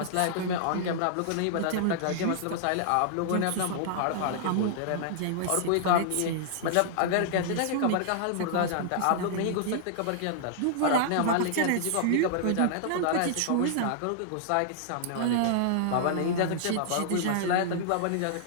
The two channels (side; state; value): both; different; correlation -0.01